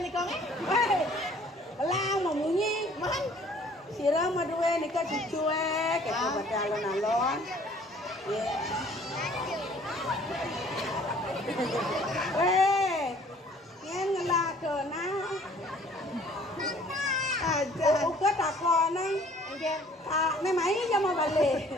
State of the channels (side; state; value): both; normal; correlation 0.55